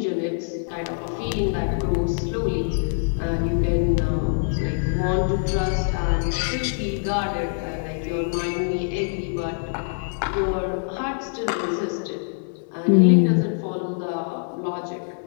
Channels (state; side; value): silent; right; 62 dB below the other